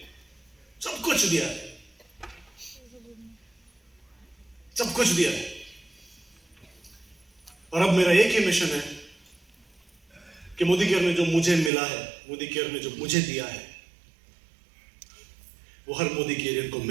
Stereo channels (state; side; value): drops out; left; at 11.7 s